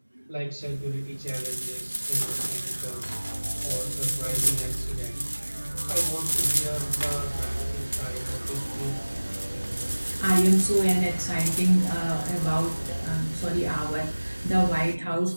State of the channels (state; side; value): inverted; both; correlation -1.00